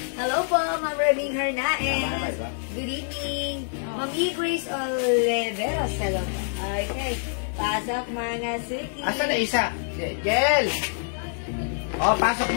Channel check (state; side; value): silent; right; digital silence